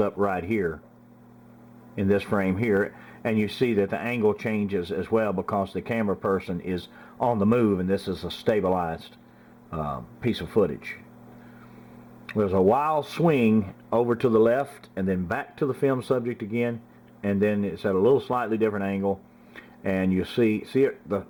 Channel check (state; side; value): identical; both; correlation 1.00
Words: right here in this frame here, and you see that the angle changes as well because the camera person is on the move, and this is a stabilized piece of footage. There's a wild swing over to the left and then back to the film subject again, and then it's at a little slightly different angle, and you see it,